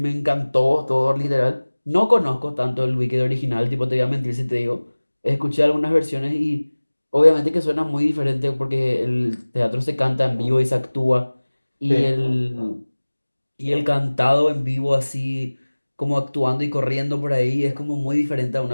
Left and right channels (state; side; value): inverted; both; correlation -1.00